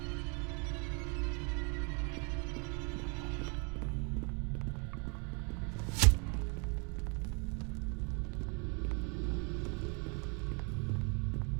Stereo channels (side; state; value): left; quieter; 34.9 dB